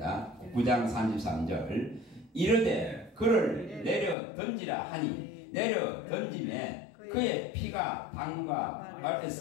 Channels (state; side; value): drops out; right; at 4.2 s